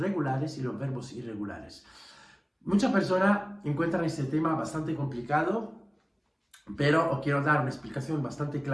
y los verbos irregulares. Muchas personas encuentran este tema bastante complicado, pero os quiero dar una explicación bastante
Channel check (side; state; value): both; identical; correlation 1.00